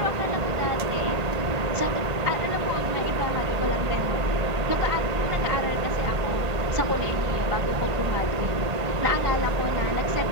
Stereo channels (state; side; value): late; left; 1.5 ms